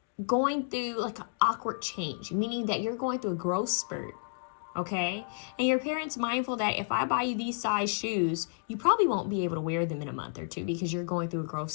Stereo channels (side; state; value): right; silent; digital silence